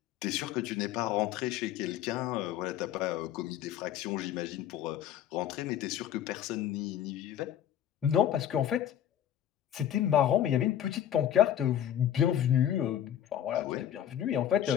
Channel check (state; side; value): quieter; right; 10.5 dB